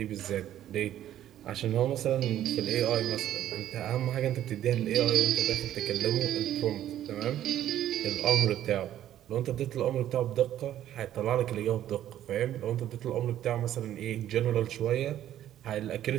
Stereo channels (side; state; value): left; quieter; 11.9 dB